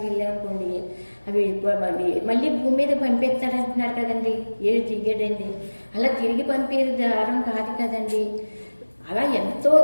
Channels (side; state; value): both; inverted; correlation -1.00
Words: వెళ్ళామనుకోండి, అవి మళ్ళీ భూమి మీద పంపిస్తాడు అంటున్నారు కదండి. ఏడు దిగాడండి, అలా తిరిగి పంపేది దారం కాదు కదండి. అలా ఎంతో